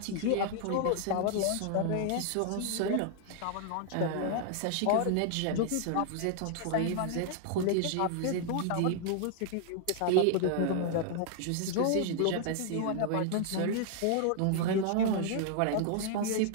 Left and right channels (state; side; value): different; both; correlation -0.01